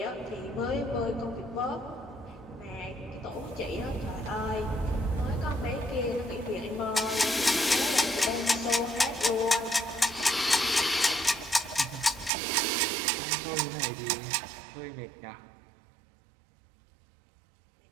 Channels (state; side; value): drops out; left; at 12.3 s